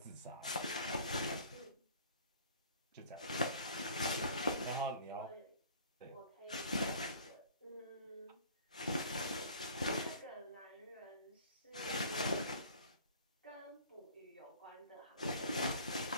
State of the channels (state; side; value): inverted; both; correlation -0.48